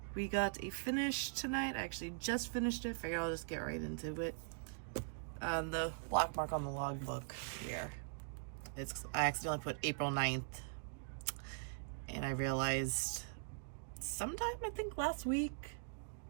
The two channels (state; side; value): silent; left; digital silence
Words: we got a finish tonight. I actually just finished it. Figured I'll just get right into it. The black mark on the logbook here. I accidentally put April 9th. And I realized sometime, I think last week.